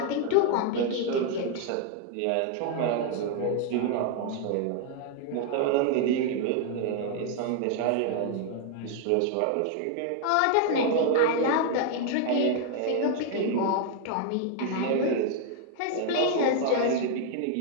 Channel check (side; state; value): both; different; correlation 0.00